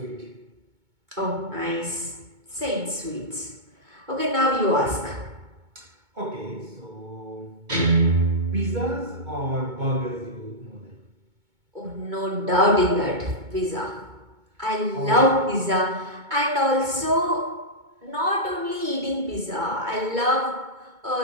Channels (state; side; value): late; left; 2.2 ms